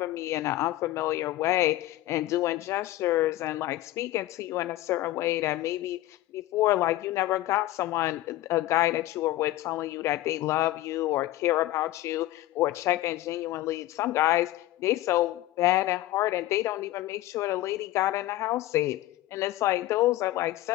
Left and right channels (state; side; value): quieter; right; 15.8 dB